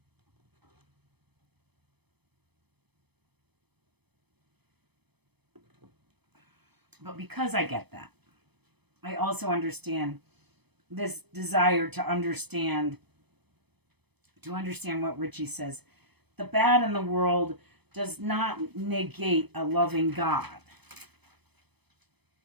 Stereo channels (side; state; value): left; late; 0.98 ms